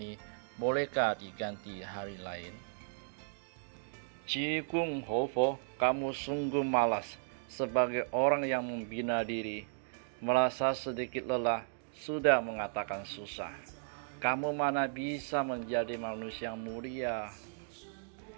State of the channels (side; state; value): left; silent; digital silence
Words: bolehkah diganti hari lain? Cikung Hofo, kamu sungguh malas. Sebagai orang yang membina diri, merasa sedikit lelah, sudah mengatakan susah. Kamu mana bisa menjadi manusia mulia?